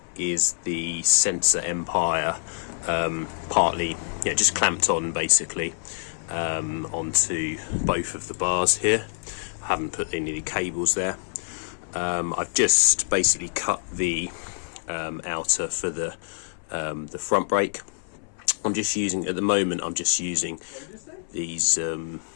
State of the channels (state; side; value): silent; right; 61 dB below the other